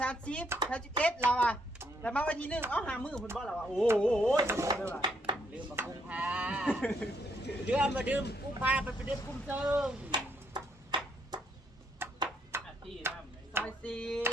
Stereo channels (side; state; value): both; normal; correlation 0.72